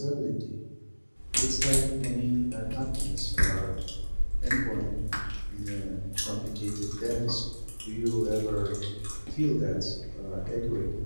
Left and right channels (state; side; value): inverted; both; correlation -1.00